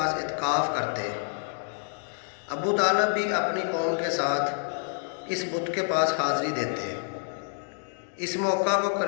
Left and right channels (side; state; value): right; silent; 59 dB below the other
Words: اعتکاف کرتے۔ ابو طالب بھی اپنی قوم کے ساتھ اس بت کے پاس حاضری دیتے۔ اس موقع کو